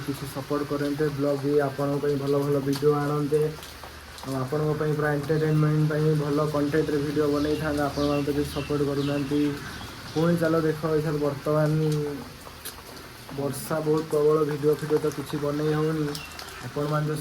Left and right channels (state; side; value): identical; both; correlation 1.00